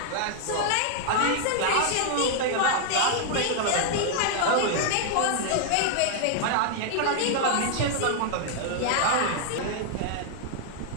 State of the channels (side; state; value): both; different; correlation 0.00